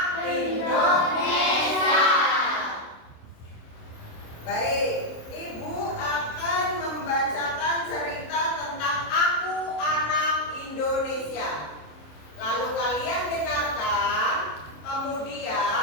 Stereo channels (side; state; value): right; late; 27 ms